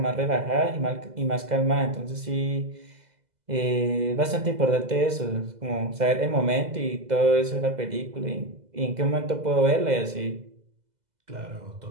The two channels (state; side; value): late; left; 2.0 ms